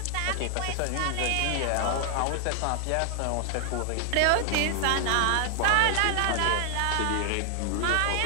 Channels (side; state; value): both; different; correlation 0.00